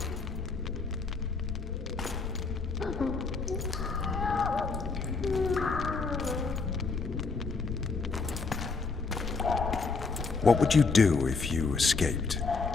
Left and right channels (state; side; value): quieter; right; 4.4 dB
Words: What would you do if you escaped?